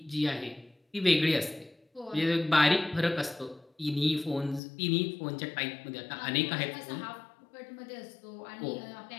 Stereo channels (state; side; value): drops out; right; at 4.6 s